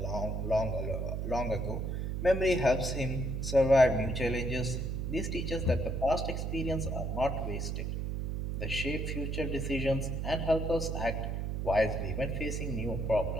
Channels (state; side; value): noise; right; hum, 2 dB below the sound